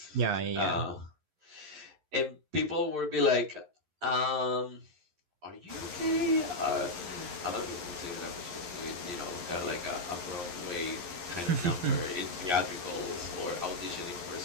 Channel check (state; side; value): late; left; 11 ms